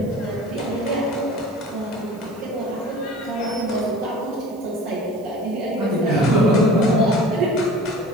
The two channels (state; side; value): noise; right; hiss, 27 dB below the sound